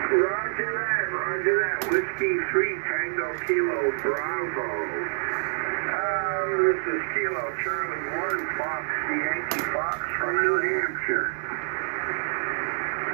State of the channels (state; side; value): silent; left; digital silence